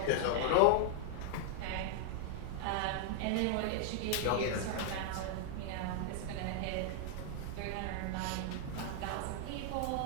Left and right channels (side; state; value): both; different; correlation -0.01